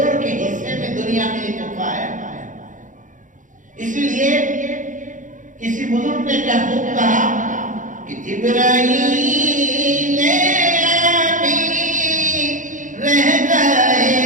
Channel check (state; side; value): late; left; 0.37 ms